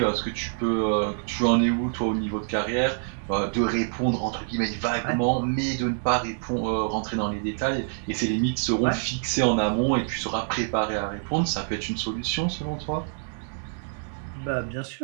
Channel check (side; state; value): left; silent; digital silence